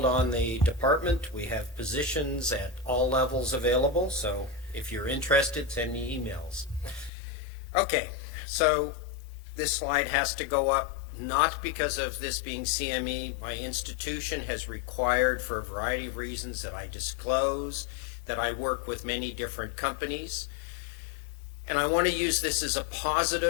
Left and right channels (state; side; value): drops out; right; at 7.1 s